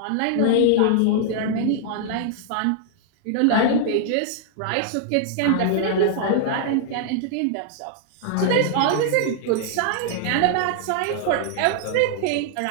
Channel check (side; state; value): both; different; correlation -0.01